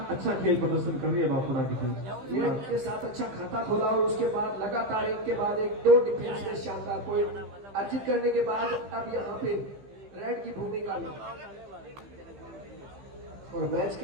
अच्छा खेल प्रदर्शन कर रही है बापुड़ा की टीम। रेड के साथ अच्छा खाता खोला और उसके बाद लगातार एक के बाद एक 2 डिफेंस में शानदार पॉइंट अर्जित करने के बाद अब यहाँ पे रेड की भूमिका में और मैच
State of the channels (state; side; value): late; left; 15 ms